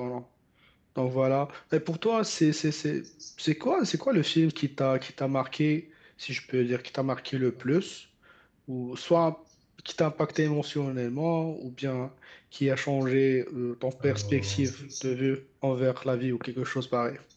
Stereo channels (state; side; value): identical; both; correlation 1.00